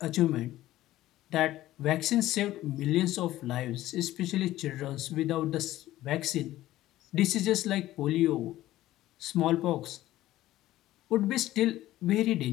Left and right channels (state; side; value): quieter; right; 15.1 dB